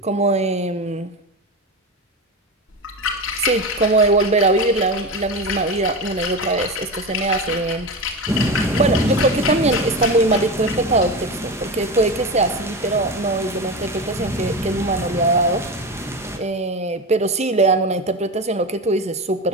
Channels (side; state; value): both; normal; correlation 0.22